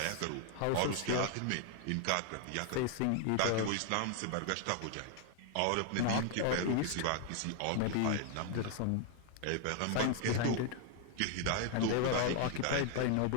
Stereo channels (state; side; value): different; both; correlation 0.00